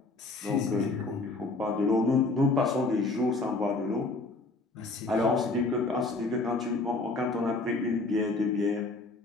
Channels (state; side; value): quieter; right; 3.3 dB